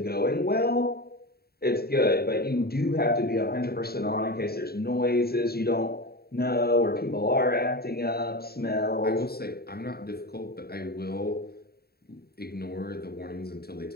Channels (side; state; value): right; late; 0.45 ms